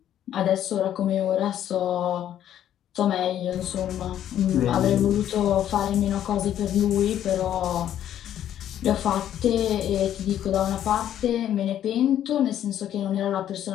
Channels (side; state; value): right; quieter; 10.9 dB